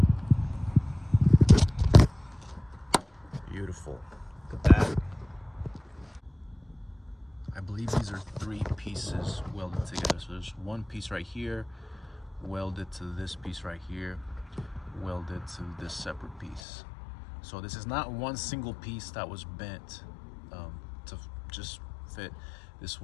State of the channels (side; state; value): right; drops out; at 16.6 s